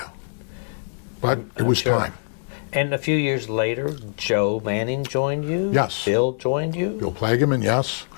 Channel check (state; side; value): silent; right; 63 dB below the other